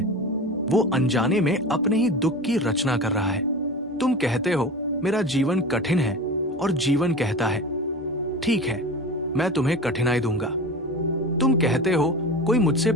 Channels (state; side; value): normal; both; correlation 0.31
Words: वो अनजाने में अपने ही दुख की रचना कर रहा है। तुम कहते हो मेरा जीवन कठिन है, और जीवन कहता है ठीक है, मैं तुम्हें कठिनाई दूंगा। तुम कहते हो कोई मुझसे